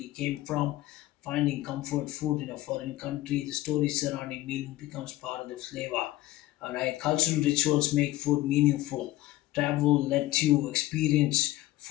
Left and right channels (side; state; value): right; quieter; 16.3 dB